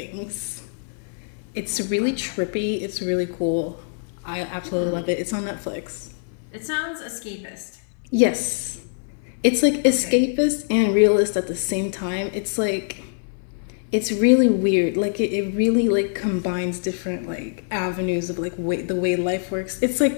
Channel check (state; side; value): silent; right; 63 dB below the other